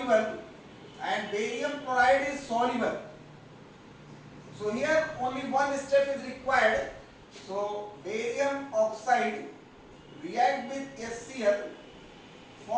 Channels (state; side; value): identical; both; correlation 1.00